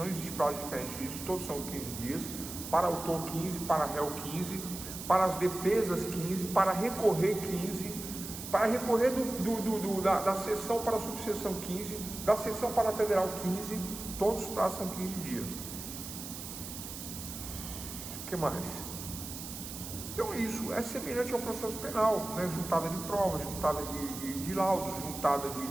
existe prazo diferente disso, todos são 15 dias, para autor 15, para réu 15, para as defesas 15, para recorrer 15, para recorrer da seção para a subseção 15, da seção para a federal 15, todos os prazos são 15 dias. O que mais? Então isso é semelhante ao processo penal, né? Juntada de provas, juntada de laudos, juntada de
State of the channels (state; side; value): noise; right; hiss, 9 dB below the sound